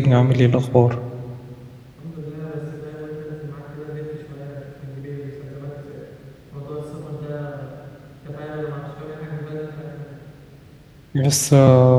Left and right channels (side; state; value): both; identical; correlation 1.00